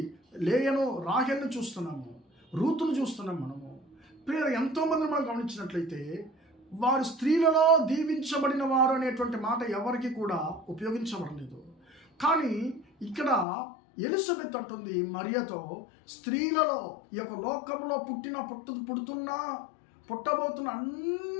లేయను, రాహేల్ను చూస్తున్నాము, రూతును చూస్తున్నాము. మనము ప్రియుల ఎంతోమందిని మనం గమనించినట్లయితే వారు స్త్రీలలో దీవించబడిన వారు అనేటువంటి మాట ఎవరికి కూడా ఉపయోగించబడలేదు. కానీ ఇక్కడ ఎలిజబెత్ అంటుంది మరియతో, స్త్రీలలో ఈ యొక్క లోకంలో పుట్టబోతున్న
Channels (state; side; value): drops out; right; at 13.5 s